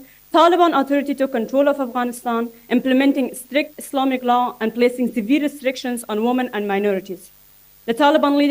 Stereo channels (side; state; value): both; identical; correlation 1.00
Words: Taliban Authority took control of Afghanistan, implementing strict Islamic law and placing severe restrictions on women and minorities. The Taliban